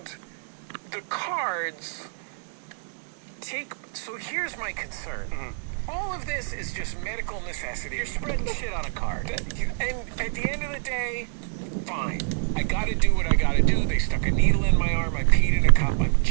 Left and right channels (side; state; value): left; silent; 61 dB below the other